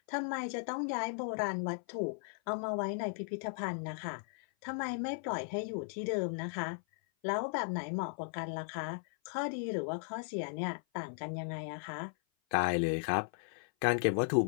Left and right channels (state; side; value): silent; right; 53 dB below the other